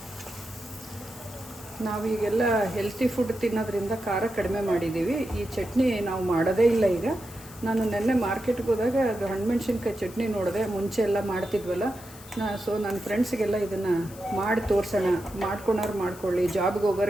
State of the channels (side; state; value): left; noise; hiss, 19 dB below the sound